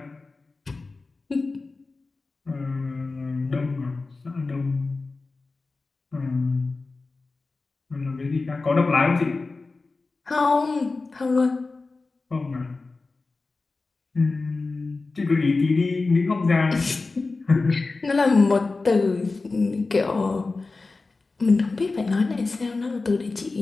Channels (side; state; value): right; quieter; 3.7 dB